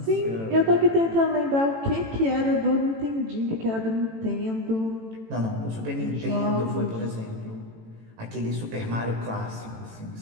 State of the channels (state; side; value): late; left; 18 ms